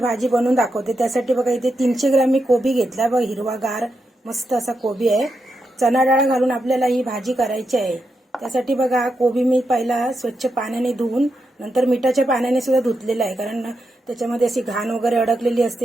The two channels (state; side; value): normal; both; correlation 0.85